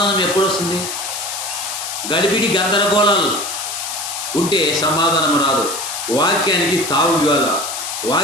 ఎప్పుడు వస్తుంది? గడిబిడి గందరగోళాలు ఉంటే సమాధానం రాదు. వాక్యానికి తావు ఇవ్వాల,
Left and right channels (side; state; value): left; noise; hiss, 5 dB below the sound